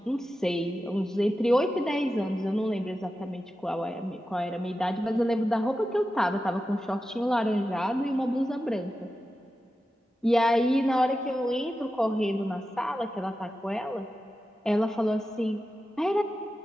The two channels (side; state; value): both; normal; correlation 0.92